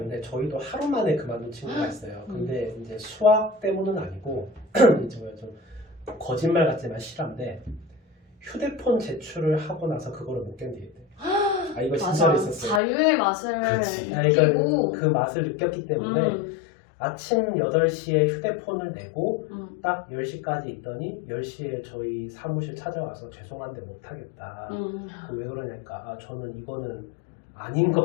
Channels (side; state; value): right; drops out; at 12.8 s